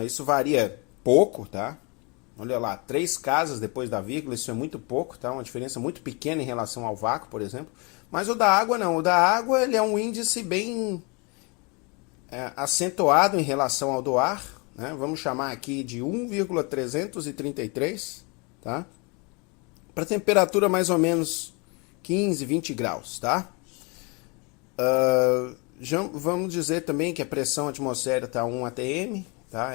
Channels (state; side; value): quieter; right; 30.6 dB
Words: Isso varia pouco, tá? Olha lá, 3 casas depois da vírgula, isso é muito pouco, tá? Uma diferença muito pequena em relação ao vácuo, por exemplo. Mas o da água não, o da água ele é um índice bem acentuado em relação ao do ar, né? Vamos chamar aqui de 1,333, tá? Para temperatura mais ou menos 15, 20 graus, tá? Vamos dizer também que a pressão atmosférica está 1 atm, tá?